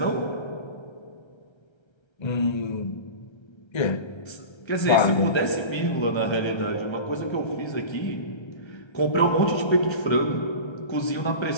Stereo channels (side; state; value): right; late; 1.3 ms